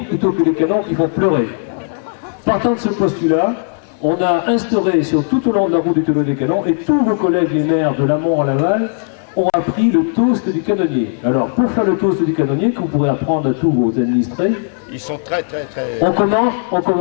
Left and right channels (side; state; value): right; silent; 61 dB below the other